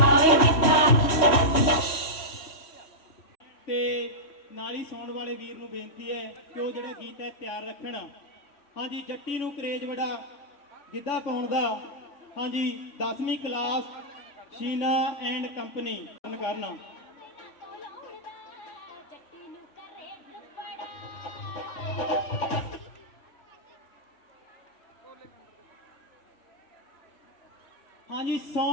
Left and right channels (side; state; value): right; late; 3.1 ms